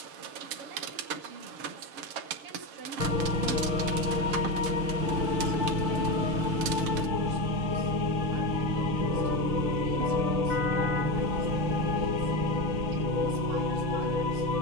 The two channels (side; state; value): left; late; 6.7 ms